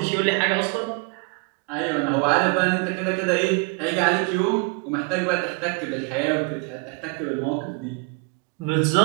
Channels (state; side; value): quieter; left; 32.6 dB